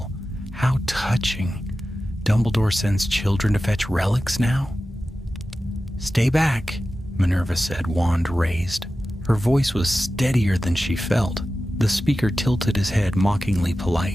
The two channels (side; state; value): both; normal; correlation 0.94